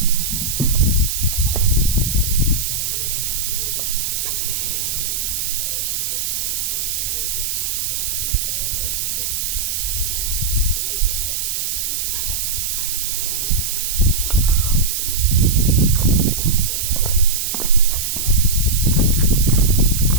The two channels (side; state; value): right; noise; hiss, 1 dB below the sound